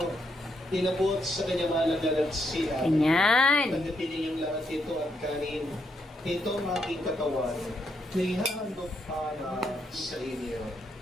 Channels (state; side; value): normal; both; correlation 0.78